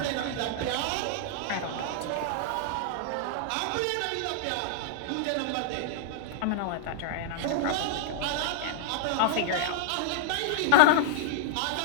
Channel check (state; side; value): different; both; correlation -0.01